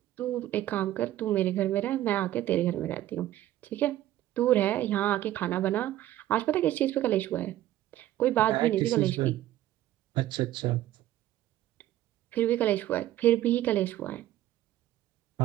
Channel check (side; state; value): left; quieter; 13.8 dB